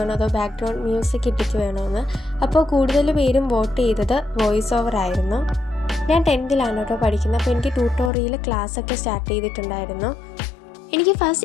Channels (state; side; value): drops out; right; at 8.1 s